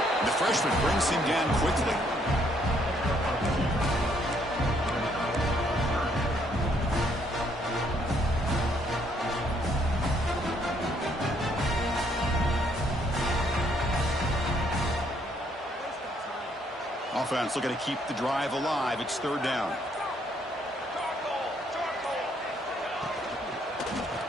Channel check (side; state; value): both; normal; correlation 0.69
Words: And the freshman brings him down quickly. Offense looking to keep the drive alive. It's third down.